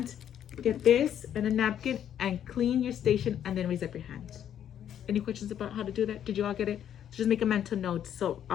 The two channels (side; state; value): right; quieter; 9.9 dB